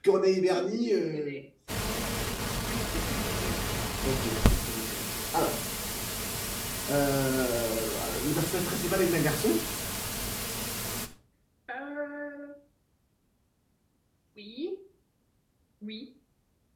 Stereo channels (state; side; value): identical; both; correlation 1.00